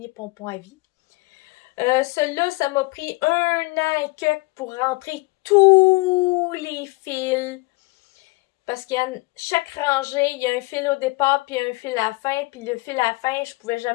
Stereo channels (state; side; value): quieter; right; 24.3 dB